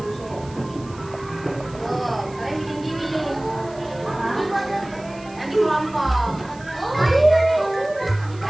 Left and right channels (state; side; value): noise; right; hiss, 23 dB below the sound